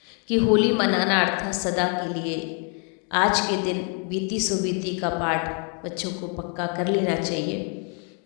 कि होली मनाना अर्थात सदा के लिए आज के दिन बीती सो बीती का पाठ बच्चों को पक्का कर लेना चाहिए,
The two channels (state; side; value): quieter; right; 39.8 dB